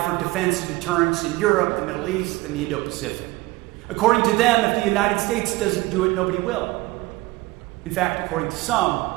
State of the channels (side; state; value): left; quieter; 20.5 dB